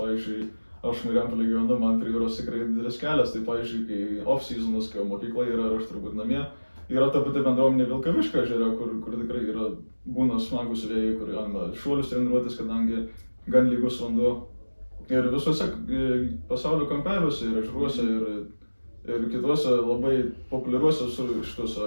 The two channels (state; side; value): inverted; both; correlation -1.00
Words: aš Marijampolėj gyvenu, man prie jūros tikrai didelis kelias, tai pavyzdžiui, kai off-seasonas, kai mokykla yra ir aš turbūt namie, yra ta pati bendruomenė Vilkaviškio ežere, kur tikrai būna smagus vėjai, kur galima šuolius treniruotis, kadangi gan lygus vanduo. Ir visuose pasaulio kampeliuose ir ežeruose ir kituose labai populiariuose